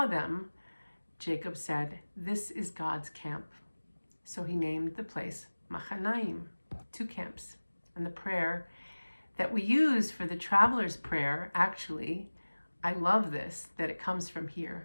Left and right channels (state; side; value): inverted; both; correlation -1.00